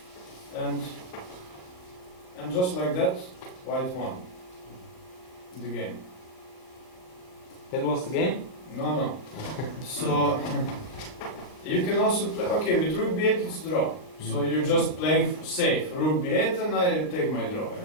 and just like that, white won the game. That was the game? No. So you can also play. Okay, with rook b8 it's draw. So you're just playing safe. Rook b8 and I take my draw.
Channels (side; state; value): right; late; 38 ms